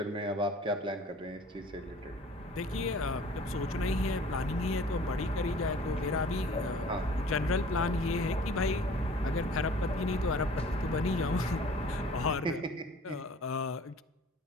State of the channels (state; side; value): normal; both; correlation 0.49